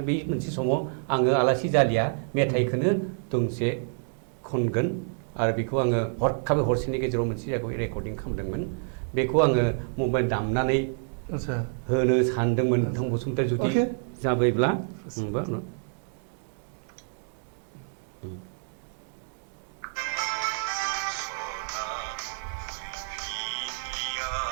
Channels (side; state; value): left; silent; digital silence